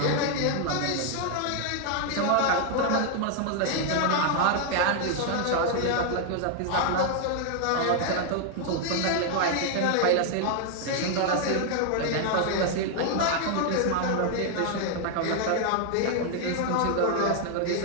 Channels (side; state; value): both; different; correlation 0.00